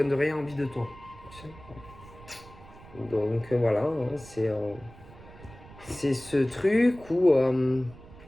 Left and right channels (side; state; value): right; noise; rumble, 20 dB below the sound